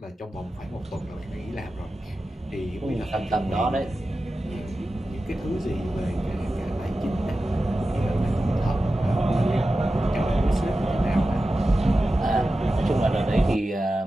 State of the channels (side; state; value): both; normal; correlation 0.93